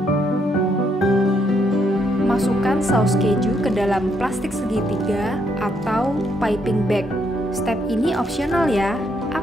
Masukkan saus keju ke dalam plastik segitiga atau piping bag. Step ini opsional ya.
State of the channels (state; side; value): normal; both; correlation 0.75